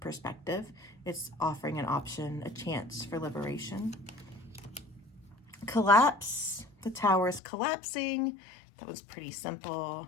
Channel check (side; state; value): right; drops out; at 7.4 s